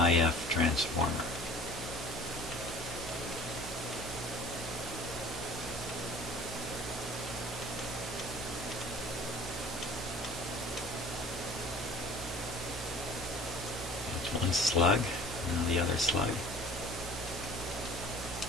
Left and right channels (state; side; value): noise; right; hum, 11 dB below the sound